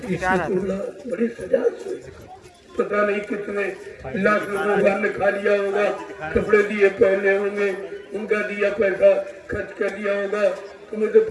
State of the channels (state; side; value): identical; both; correlation 1.00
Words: प्यार आता इसकी बड़ी सजा हुई। पता नहीं कितने लाख लोगों ने खा लिया होगा, कपड़े दिए पहने होंगे, उनका दिया पैसा खर्च कर दिया होगा, तुम्हें तो